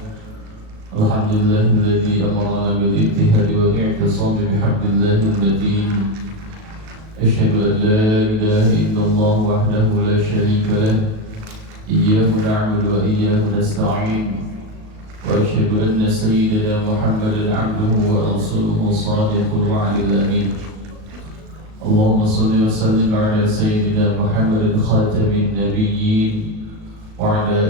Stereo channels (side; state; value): left; late; 37 ms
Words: amarna bil ittihadi wal i'tisam bihablillahi al-matin. Asyhadu an la ilaha illallah wahdahu la syarika lah. Iyyahu na'budu wa iyyahu nasta'in. وأشهد أن سيدنا محمدا عبده ورسوله صادق الوعد الأمين. اللهم صل وسلم على سيدنا محمد خاتم النبيين وعلى